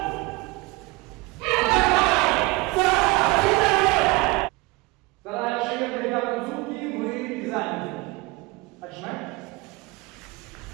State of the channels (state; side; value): quieter; left; 23.8 dB